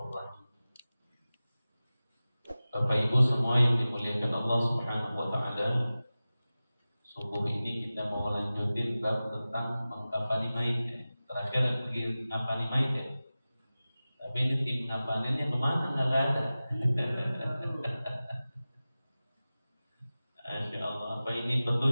rahim. Bapak Ibu semua yang dimuliakan Allah Subhanahu wa taala, subuh ini kita mau lanjutin bab tentang mengkafani mayit ya. Terakhir pergi ngafani mayit ya. Tapi ini tim ngafaninnya kemana? Nggak ada. Masya Allah, apa ini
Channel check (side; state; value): both; inverted; correlation -0.96